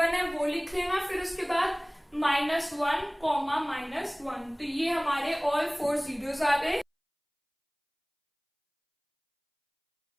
है वो लिख लेना, फिर उसके बाद -1, -1, तो ये हमारे ऑल 4 zeros आ गए।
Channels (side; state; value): both; identical; correlation 1.00